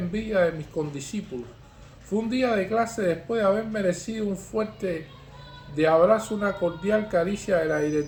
de mis condiscípulos. Fue un día de clase después de haber merecido un fuerte de abrazo, una cordial caricia de la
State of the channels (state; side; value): identical; both; correlation 1.00